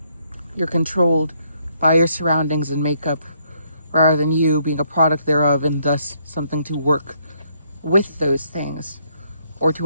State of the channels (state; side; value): inverted; both; correlation -0.71